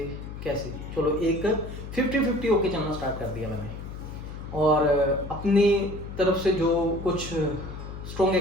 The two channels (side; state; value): left; noise; hum, 10 dB below the sound